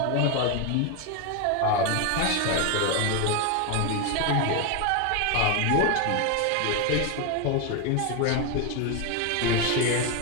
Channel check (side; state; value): both; different; correlation 0.02